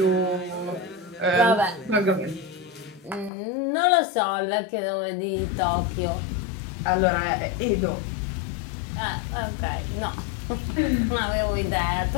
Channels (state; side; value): drops out; right; at 3.3 s